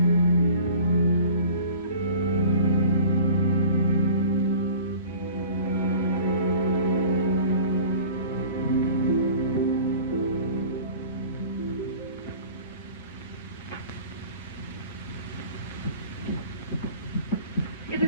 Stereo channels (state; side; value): inverted; both; correlation -0.44